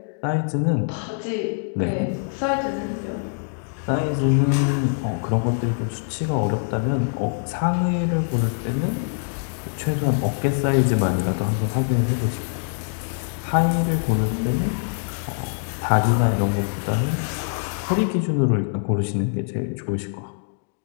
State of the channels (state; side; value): silent; right; digital silence